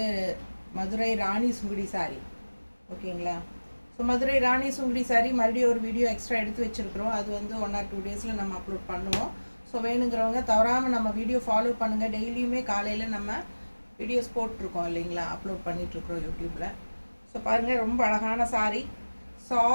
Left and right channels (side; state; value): both; inverted; correlation -1.00